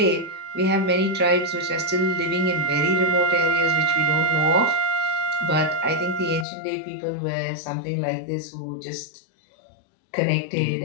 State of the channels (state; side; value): drops out; right; at 6.5 s